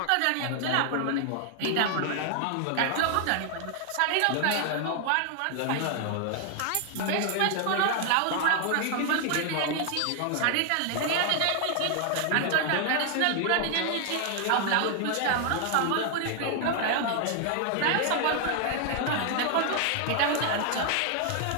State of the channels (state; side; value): different; both; correlation 0.00